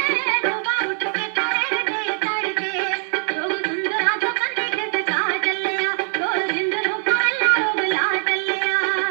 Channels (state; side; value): silent; left; 55 dB below the other